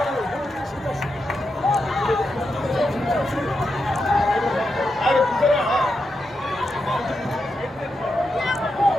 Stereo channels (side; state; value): both; normal; correlation 0.86